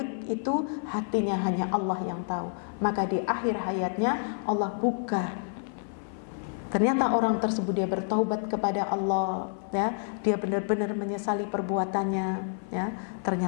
itu hatinya hanya Allah yang tahu. Maka di akhir hayatnya Allah buka. Ternyata orang tersebut dia bertaubat kepada Allah, ya. Dia benar-benar menyesali perbuatannya, ya.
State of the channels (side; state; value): right; silent; 55 dB below the other